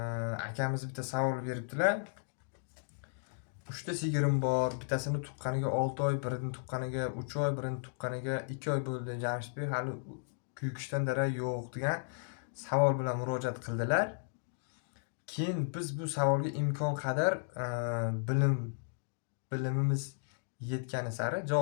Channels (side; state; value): right; silent; digital silence